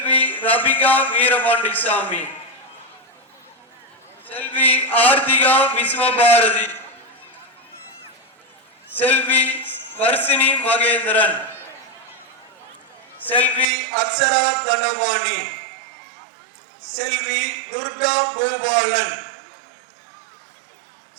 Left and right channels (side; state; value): left; drops out; at 13.7 s